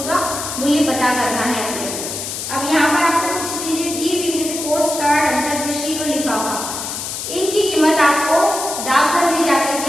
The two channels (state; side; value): noise; left; hiss, 6 dB below the sound